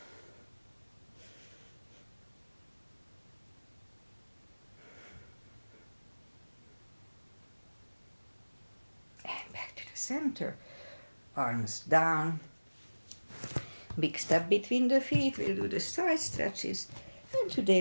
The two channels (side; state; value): both; inverted; correlation -1.00